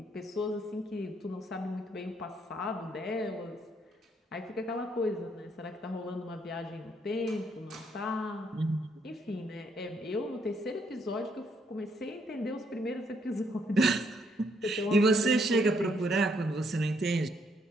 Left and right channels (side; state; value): both; normal; correlation 0.72